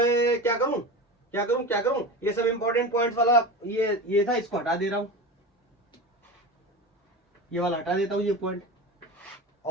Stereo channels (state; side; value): normal; both; correlation 0.27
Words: क्या करूं, ये सब इंपॉर्टेंट पॉइंट्स वाला ये था, इसको हटा दे रहा हूं, ये वाला हटा देता हूं, ये पॉइंट,